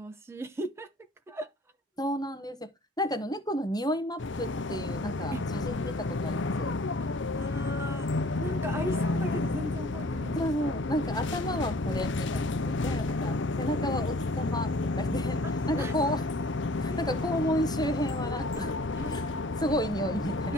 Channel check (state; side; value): normal; both; correlation 0.52